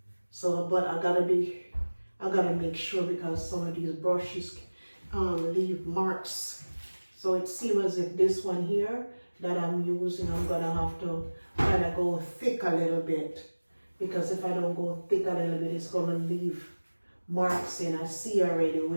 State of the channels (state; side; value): inverted; both; correlation -1.00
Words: But I gotta make sure, because some of these brushes leave marks. So it seems as if this one here that I'm using, I'm gonna have to kind of go thick a little bit, because if I don't go thick a little bit, it's gonna leave marks in. I see already